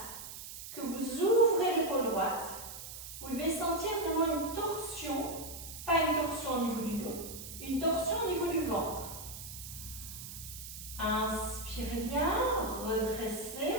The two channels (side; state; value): right; noise; hiss, 11 dB below the sound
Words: que vous ouvrez l'épaule droite. Vous devez sentir vraiment une torsion, pas une torsion au niveau du dos, une torsion au niveau du ventre. Inspirez bien, redressez.